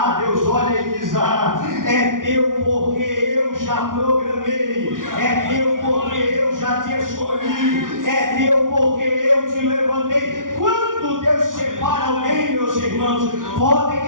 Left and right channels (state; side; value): late; left; 0.89 ms